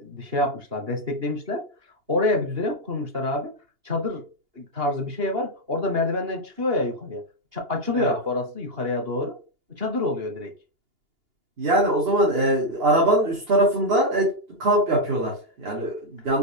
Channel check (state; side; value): late; left; 2.8 ms